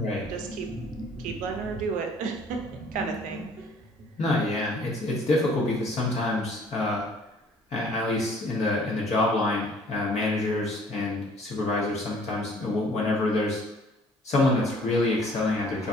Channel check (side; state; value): both; normal; correlation 0.56